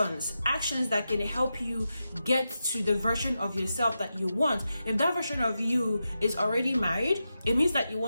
that can help you get to the version of yourself that you want. If that version of you is already married, it means that you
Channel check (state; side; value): inverted; both; correlation -0.89